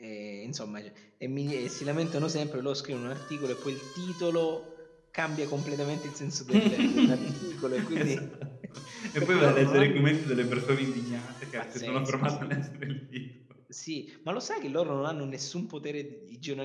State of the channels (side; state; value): both; identical; correlation 1.00